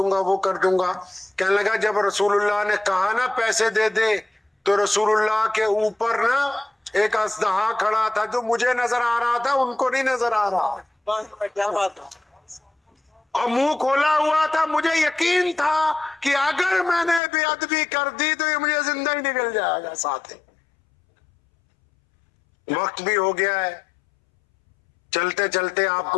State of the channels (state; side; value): drops out; right; at 17.2 s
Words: گا وہ کر دوں گا. کہنے لگا جب رسول اللہ نے کہا نا پیسے دے دے، تو رسول اللہ کے اوپر نا ایک اژدہا کھڑا تھا، جو مجھے نظر آ رہا تھا ان کو نہیں نظر آ رہا، کیا بات ہے؟ اور منہ کھولا ہوا تھا. مجھے یقین تھا کہ اگر میں نے بے ادبی کر دی تو یہ مجھے زندہ ہی نکل جائے گا ساتھ ہی. وقت بھی ہو گیا ہے، چلتے چلتے آپ